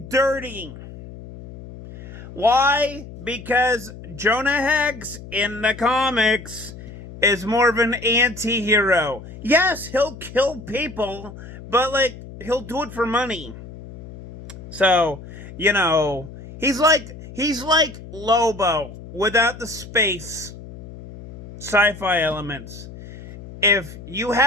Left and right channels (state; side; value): noise; left; hum, 15 dB below the sound